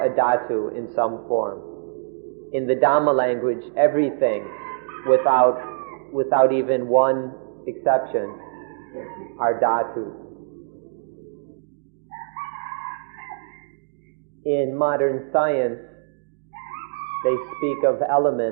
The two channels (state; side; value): silent; left; digital silence